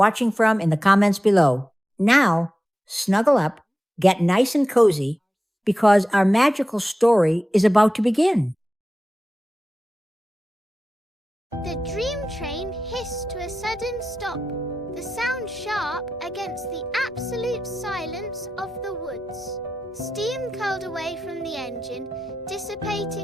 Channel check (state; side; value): normal; both; correlation 0.93